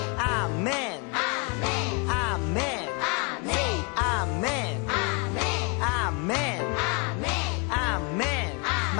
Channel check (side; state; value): right; quieter; 32.7 dB